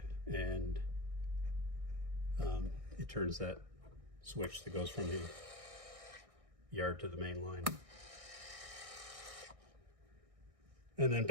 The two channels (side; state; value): left; late; 1.6 ms